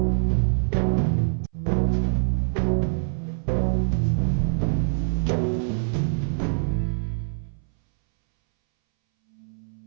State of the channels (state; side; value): silent; left; 62 dB below the other